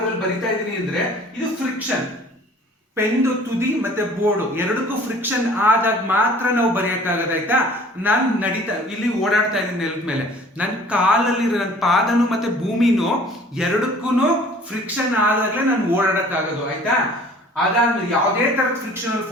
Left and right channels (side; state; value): both; normal; correlation 0.50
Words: ಅಲ್ಲಿ ಬರಿತಾ ಇದೀನಿ ಅಂದ್ರೆ ಇದು ಫ್ರಿಕ್ಷನ್. ಪೆನ್ದು ತುದಿ ಮತ್ತೆ ಬೋರ್ಡ್ ಎರಡಕ್ಕೂ ಫ್ರಿಕ್ಷನ್ ಆದಾಗ ಮಾತ್ರ ನಾವು ಬರೆಯಕ್ಕಾಗದ ಆಯ್ತಾ. ನಾನು ಇಲ್ಲಿ ಓಡಾಡ್ತಾ ಇದ್ದೀನಿ ನೆಲದ ಮೇಲೆ, ನನ್ನ ಕಾಲಲ್ಲಿ ನನ್ನ ಪಾದನು ಮತ್ತೆ ಭೂಮಿನೂ ಎರಡಕ್ಕೂ ಫ್ರಿಕ್ಷನ್ ಆದಾಗ್ಲೇ ನಾನು ಓಡಾಡಕ್ಕಾಗೋದು ಆಯ್ತಾ. ಅದಾದ್ಮೇಲೆ ಯಾವುದೇ ತರದ ಫ್ರಿಕ್ಷನಲ್